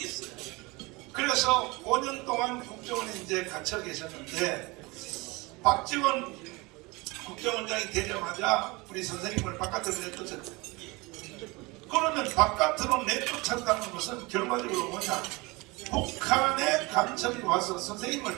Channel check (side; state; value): left; quieter; 24.5 dB